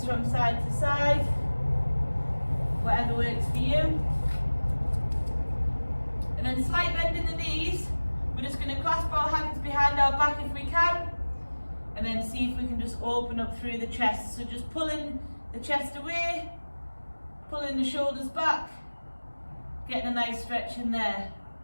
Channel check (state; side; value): inverted; both; correlation -1.00